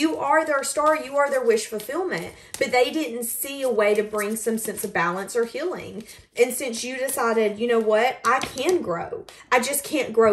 are their star. You are their wish fulfillment. But they didn't see a way to bring some sense of balance or healing. And since you decided, you know what? I can grow. I just can't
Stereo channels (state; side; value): identical; both; correlation 1.00